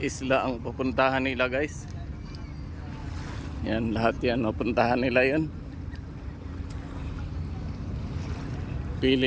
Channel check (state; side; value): identical; both; correlation 1.00